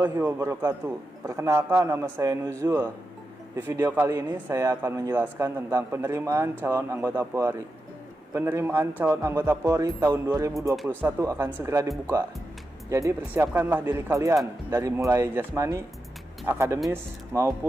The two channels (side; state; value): both; normal; correlation 0.89